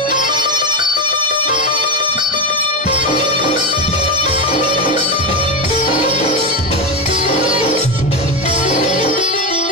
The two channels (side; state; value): both; normal; correlation 0.13